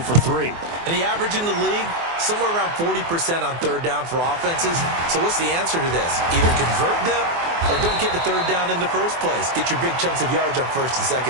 for 3. And the average in the league, somewhere around 40% on third down for offenses. So what's the answer to this? Either convert them or don't get the third down in the first place. Get your big chunks of yards on first and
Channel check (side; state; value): left; late; 24 ms